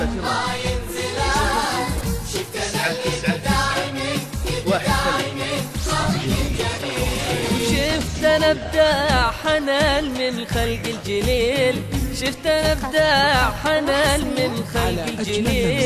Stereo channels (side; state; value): both; identical; correlation 1.00